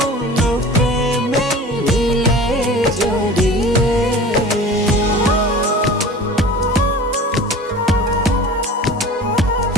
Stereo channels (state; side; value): normal; both; correlation 0.39